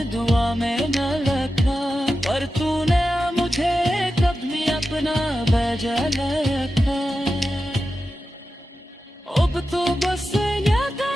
दुआ में न रखा, पर तूने मुझे कभी अपना भेजा रखा। अब तो बस याद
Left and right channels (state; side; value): normal; both; correlation 0.92